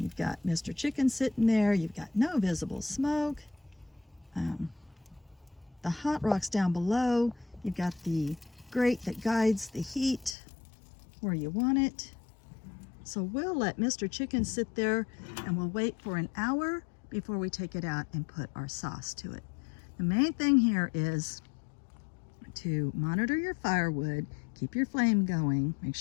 you've got Mr. Chicken sitting there. You've got no visible smoke. The hot rocks down below. You've got the grate that guides the heat where you want it. So we'll let Mr. Chicken sit there and we'll wait for an hour before we take it out and put our sauce to it. The main thing here is to monitor your firewood, keep your flame going, make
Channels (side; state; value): right; drops out; at 10.4 s